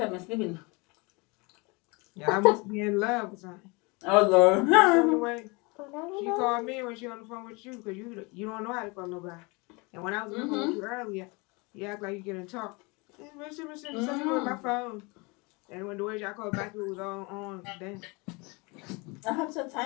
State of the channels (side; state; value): right; quieter; 27.7 dB